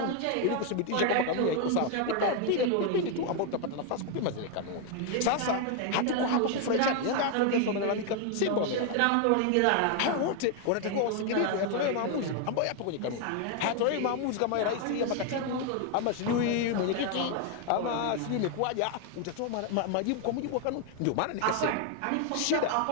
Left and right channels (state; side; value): different; both; correlation 0.01